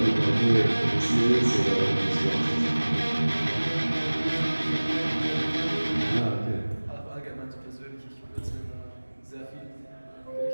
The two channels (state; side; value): inverted; both; correlation -1.00